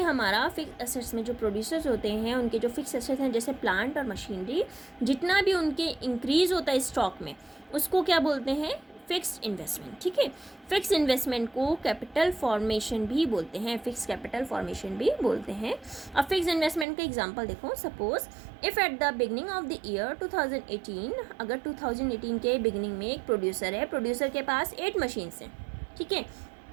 हमारा fix assets में जो producers होते हैं उनके जो fix assets हैं जैसे प्लांट और मशीनरी, जितना भी उनके इंक्रीज होता है स्टॉक में उसको क्या बोलते हैं? Fixed investment. ठीक है, फिक्स इन्वेस्टमेंट को कैपिटल फॉर्मेशन भी बोलते हैं, फिक्स कैपिटल फॉर्मेशन भी बोलते हैं. अब फिक्स इन्वेस्टमेंट का एग्जांपल देखो. Suppose if at the beginning of the year 2018, अगर 2018 के बिगनिंग में एक प्रोड्यूसर है, प्रोड्यूसर के पास 8 मशीन्स हैं. ठीक है,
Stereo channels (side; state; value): left; drops out; at 16.9 s